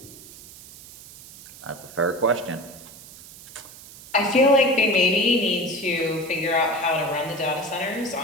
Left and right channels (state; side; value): noise; right; hiss, 18 dB below the sound